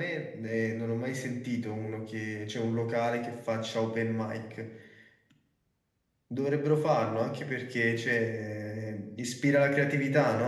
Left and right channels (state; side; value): identical; both; correlation 1.00